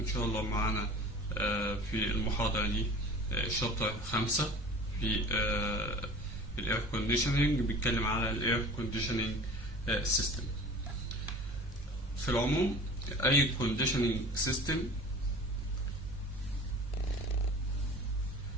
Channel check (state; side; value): normal; both; correlation 0.40